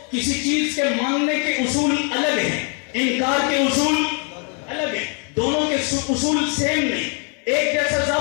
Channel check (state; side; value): quieter; right; 39.5 dB